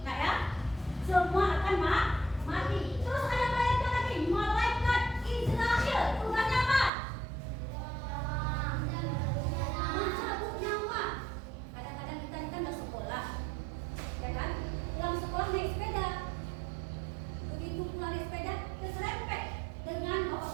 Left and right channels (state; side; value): drops out; left; at 6.9 s